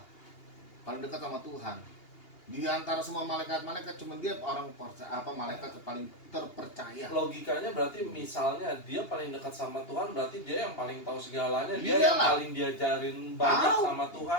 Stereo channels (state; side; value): late; right; 2.8 ms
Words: paling dekat sama Tuhan. Di antara semua malaikat-malaikat cuma dia orang malaikat paling terpercaya. Logikanya berarti misalnya dia paling dekat sama Tuhan, berarti dia yang paling tahu segalanya, dia Iyalah. yang paling diajarin banyak Tahu. sama